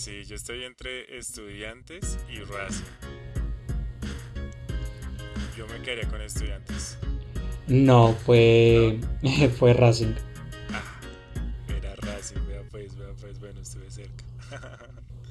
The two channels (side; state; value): both; identical; correlation 1.00